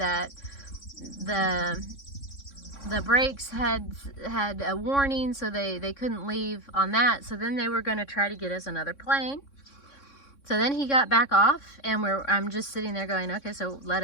the brakes had a warning, so they couldn't leave on that. So then they were going to try to get us another plane. So then he got back off, and I'm just sitting there going, okay, so let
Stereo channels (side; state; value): right; late; 3.6 ms